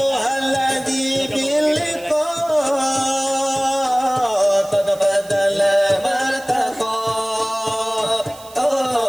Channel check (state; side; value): noise; right; hiss, 21 dB below the sound